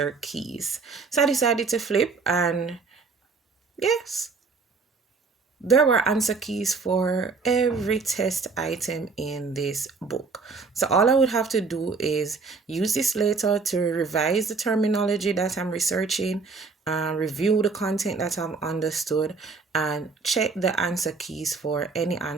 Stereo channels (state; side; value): quieter; left; 4.5 dB